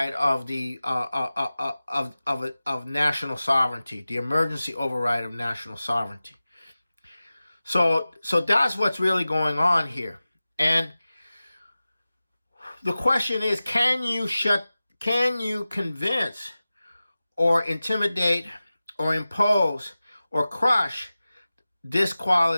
of the of national sovereignty, the emergency override of national sovereignty. So that's what's really going on here. And the question is, can you convince or intimidate or impose or crush this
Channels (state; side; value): inverted; both; correlation -0.96